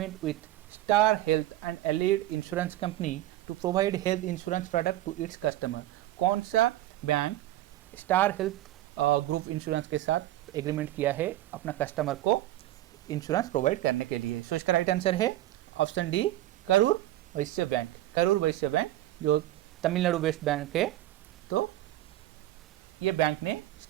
with Star Health and Allied Insurance Company to provide health insurance product to its customer. कौन सा bank Star Health group insurance के साथ एग्रीमेंट किया है अपना कस्टमर को इंश्योरेंस प्रोवाइड करने के लिए? सो इसका राइट आंसर है option D, Karur Vysya bank. Karur Vysya bank जो तमिलनाडु बेस्ड बैंक है, तो ये बैंक ने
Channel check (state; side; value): quieter; left; 14.9 dB